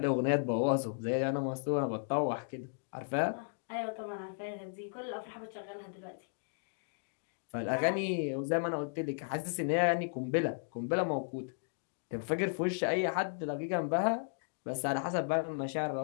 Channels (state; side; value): silent; right; digital silence